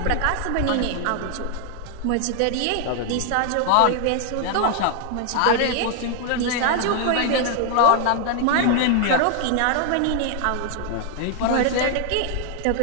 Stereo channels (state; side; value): different; both; correlation 0.00